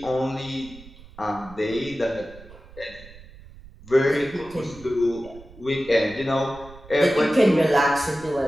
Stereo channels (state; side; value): noise; right; rumble, 20 dB below the sound